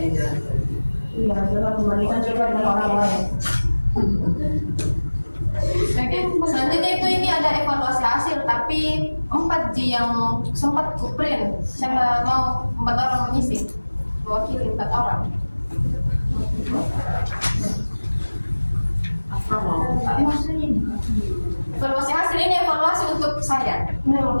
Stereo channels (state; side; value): inverted; both; correlation -1.00